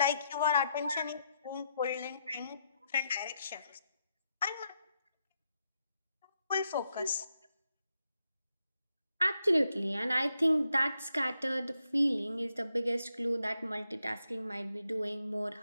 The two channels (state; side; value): inverted; both; correlation -0.81